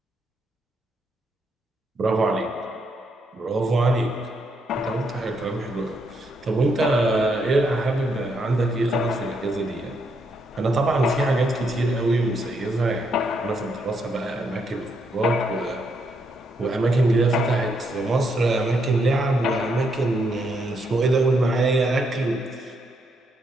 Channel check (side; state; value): both; normal; correlation 0.77